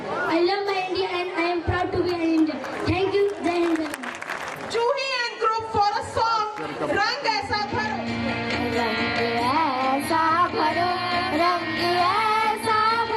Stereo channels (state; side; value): identical; both; correlation 1.00